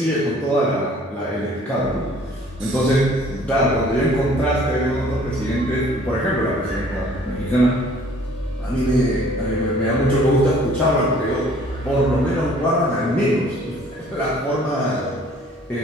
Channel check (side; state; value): both; normal; correlation 0.55